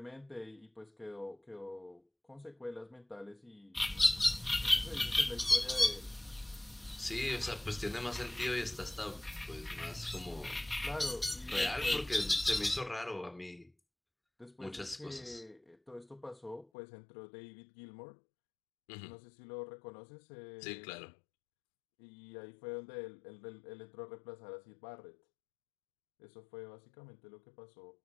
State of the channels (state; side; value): drops out; right; at 16.7 s